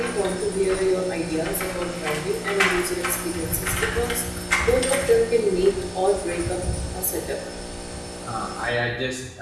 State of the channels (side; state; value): both; identical; correlation 1.00